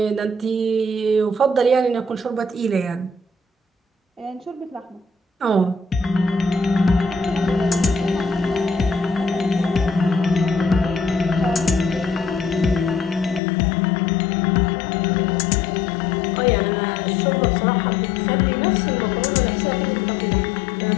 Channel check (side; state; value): right; drops out; at 13.4 s